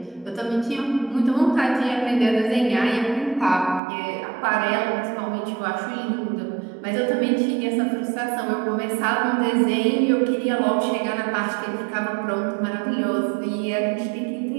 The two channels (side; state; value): left; drops out; at 3.8 s